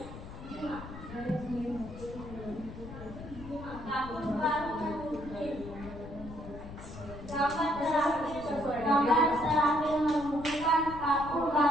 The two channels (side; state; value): left; noise; rumble, 13 dB below the sound